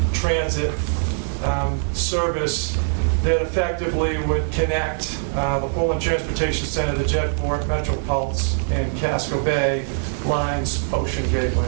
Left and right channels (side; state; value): left; silent; digital silence